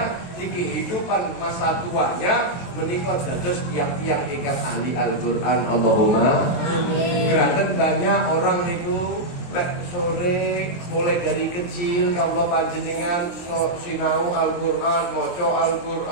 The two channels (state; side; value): late; right; 23 ms